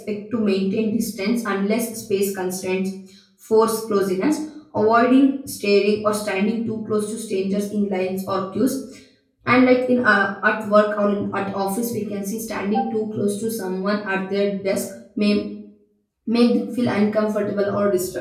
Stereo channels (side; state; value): both; identical; correlation 1.00